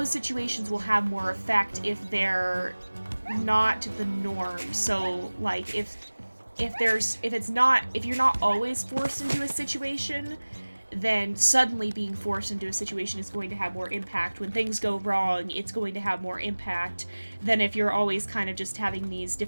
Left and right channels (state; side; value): inverted; both; correlation -1.00